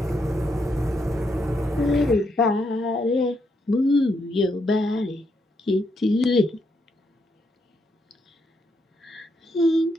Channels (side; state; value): both; normal; correlation 0.79